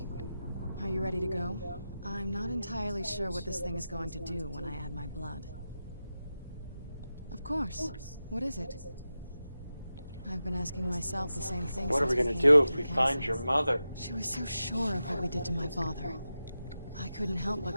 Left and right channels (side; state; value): both; inverted; correlation -0.92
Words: Are you ready to go? I'm not entirely sure what this thing is going to do when I add my blood. Of course. What is it? I've been asking myself the same thing. What are we since gonna came do back if to we the find castle. your mother? She was so sure of what we did to my father. I couldn't help but